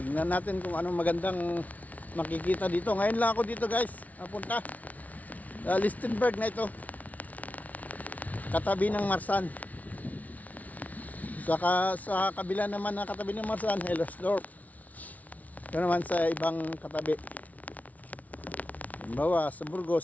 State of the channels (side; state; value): right; late; 0.072 ms